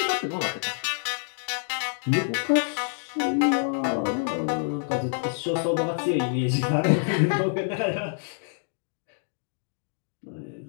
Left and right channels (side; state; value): right; silent; digital silence